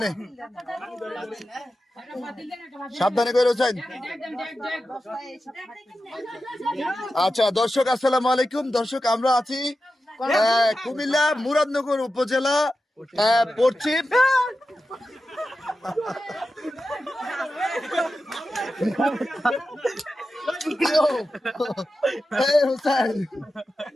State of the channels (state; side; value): normal; both; correlation 0.91